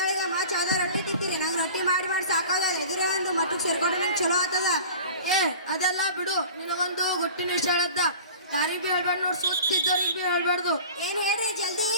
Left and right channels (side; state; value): both; inverted; correlation -0.41